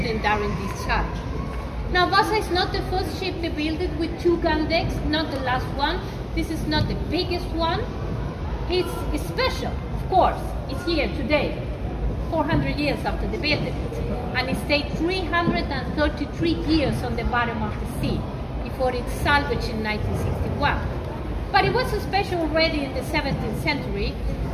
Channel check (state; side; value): identical; both; correlation 1.00